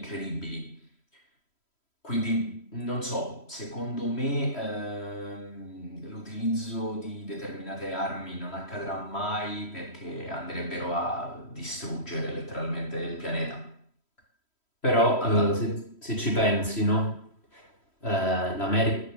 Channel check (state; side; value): late; right; 3.1 ms